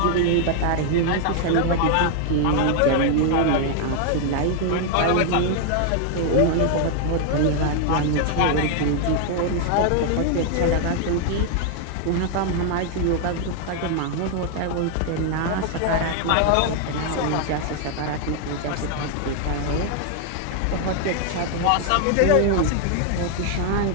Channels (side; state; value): both; different; correlation 0.00